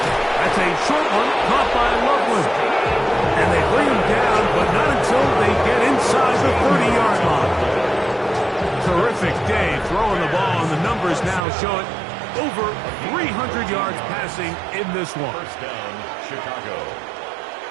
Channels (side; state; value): left; drops out; at 11.4 s